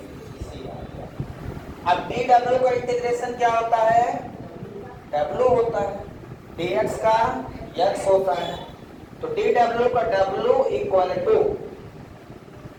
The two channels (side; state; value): both; identical; correlation 1.00